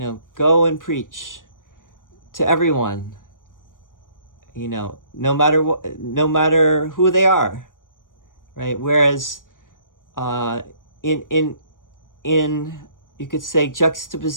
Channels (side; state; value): right; late; 0.89 ms